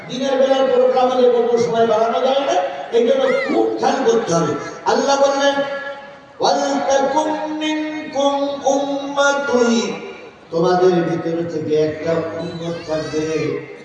দিনের বেলার প্রোগ্রাম হলে কোনো সময় বাড়ানো যায় না। এই জন্য খুব খেয়াল করতে হবে। আল্লাহ বললেন ওয়ালতাকুম মিনকুম উম্মাতুন, তোমাদের ভিতর থেকে একটা উম্মত থাকবে।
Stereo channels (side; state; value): both; identical; correlation 1.00